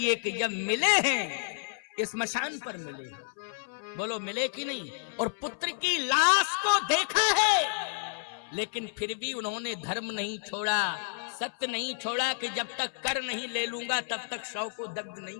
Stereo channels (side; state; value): right; silent; 58 dB below the other